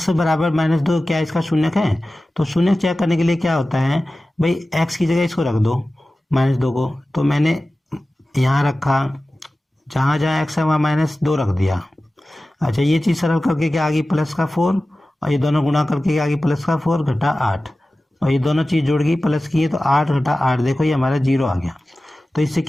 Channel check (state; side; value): normal; both; correlation 0.96